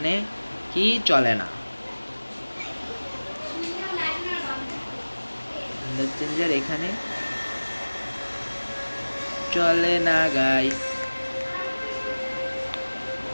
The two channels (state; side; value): inverted; both; correlation -1.00